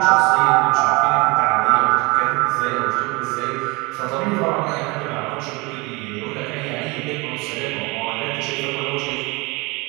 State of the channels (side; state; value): left; quieter; 25.8 dB